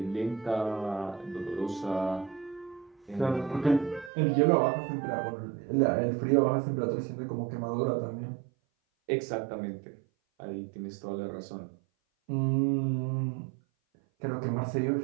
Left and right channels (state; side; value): drops out; left; at 4.1 s